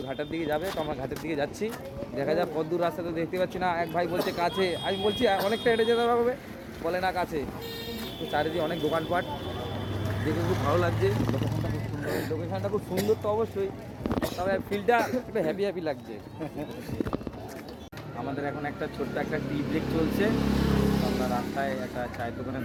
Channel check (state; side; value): identical; both; correlation 1.00